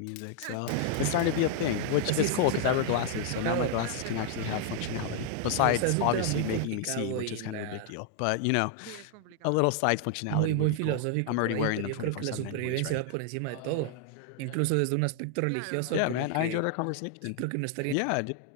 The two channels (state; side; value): different; both; correlation 0.00